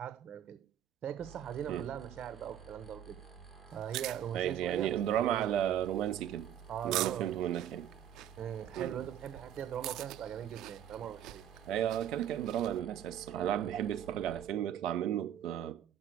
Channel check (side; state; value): left; quieter; 10.4 dB